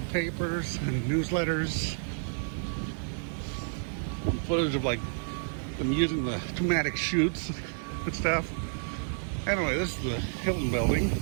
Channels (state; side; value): silent; left; digital silence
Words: papers and newsletters, and footage of like them using the pneumatic chutes and stuff. Anyway, this is the Hilton Building,